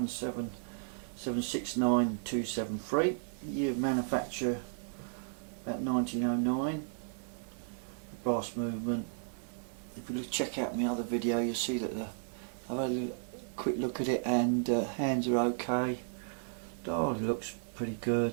Year of manufacture about 1909. The brass movement. If you check out my other video, you'll see that I've had a quick look at it, and hands are okay. Dial looks pretty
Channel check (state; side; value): silent; left; digital silence